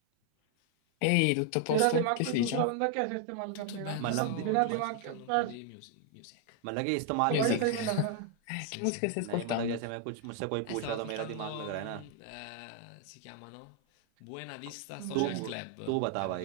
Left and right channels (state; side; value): different; both; correlation 0.00